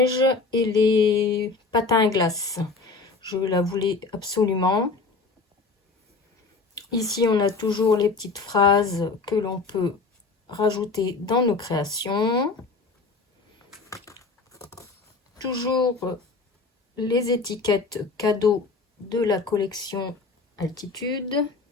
et les patins à glace. Je la voulais absolument. Ici, on a toujours les petites phrases que l'on peut rajouter dans nos créations. Toujours les étiquettes cadeaux de la collection Altitude.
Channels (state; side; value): quieter; right; 4.1 dB